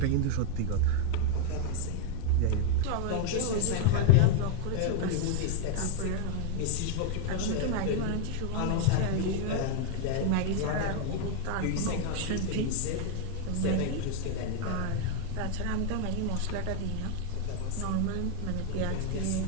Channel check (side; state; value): both; different; correlation 0.00